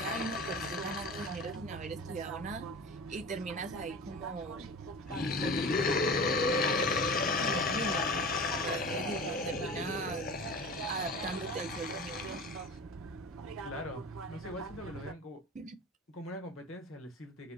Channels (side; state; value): both; normal; correlation 0.35